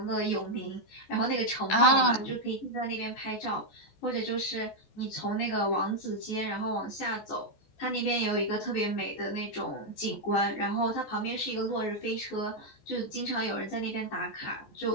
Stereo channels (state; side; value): late; right; 14 ms